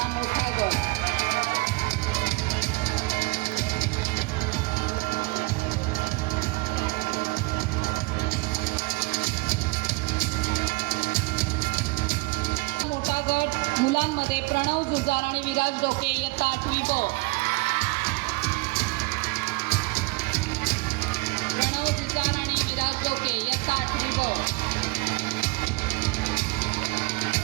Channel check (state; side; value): quieter; left; 24.9 dB